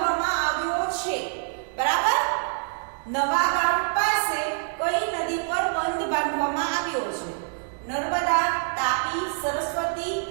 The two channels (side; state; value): left; silent; digital silence